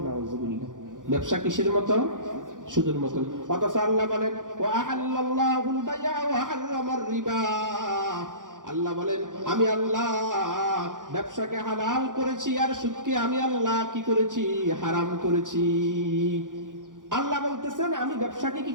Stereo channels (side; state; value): left; late; 0.88 ms